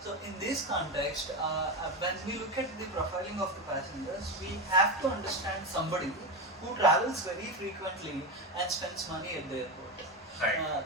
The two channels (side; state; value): both; normal; correlation 0.16